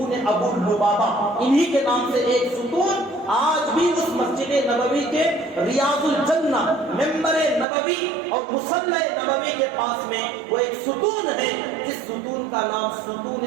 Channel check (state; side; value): drops out; left; at 7.7 s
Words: ابو لبابہ، انہی کے نام سے ایک ستون آج بھی اس مسجد نبوی کے ریاض الجنہ ممبر نبوی اور مصلی نبوی کے پاس میں وہ ایک ستون ہے، جس ستون کا نام ستون